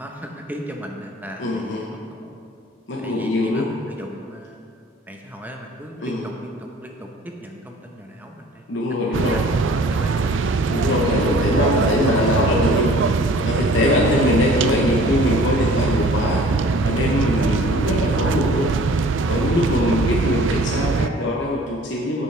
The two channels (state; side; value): normal; both; correlation 0.50